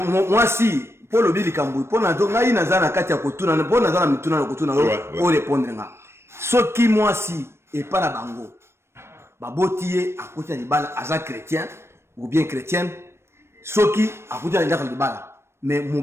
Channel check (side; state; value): left; late; 0.12 ms